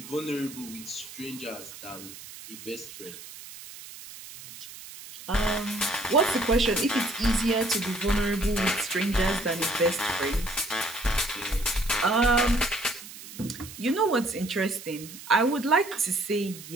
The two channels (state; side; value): noise; right; hiss, 15 dB below the sound